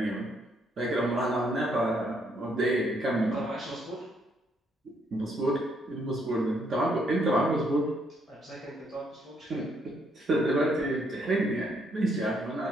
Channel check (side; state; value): both; normal; correlation 0.72